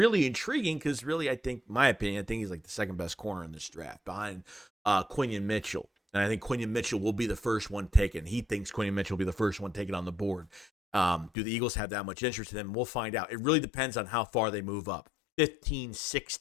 intriguing because really, my opinion, I think he's the second best corner in this draft behind Quinion Mitchell. And I think Quinion Mitchell will be the first one taken. He thinks Quinion Mitchell will be the first one taken on the board. Do the Eagles have that much interest in him? We'll find out. It really depends on how far they move up. 15,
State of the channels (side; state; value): right; drops out; at 11.3 s